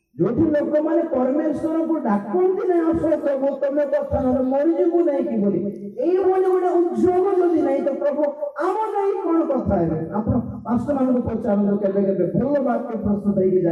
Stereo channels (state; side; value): identical; both; correlation 1.00